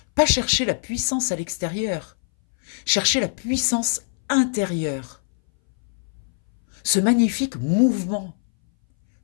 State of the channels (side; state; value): right; silent; 61 dB below the other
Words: Pas chercher la puissance à l'extérieur, chercher la puissance intérieure. Ce magnifique mouvement